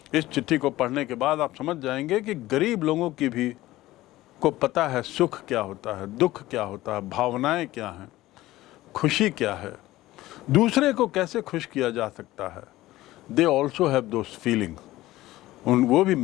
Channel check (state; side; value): quieter; right; 16.8 dB